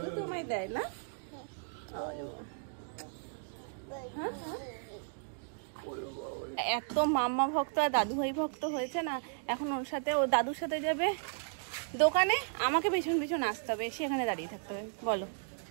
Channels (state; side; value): silent; left; digital silence